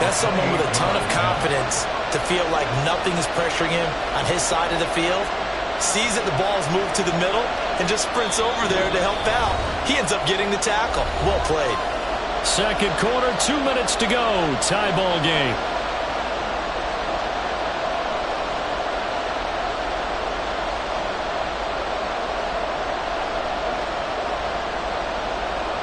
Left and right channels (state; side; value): identical; both; correlation 1.00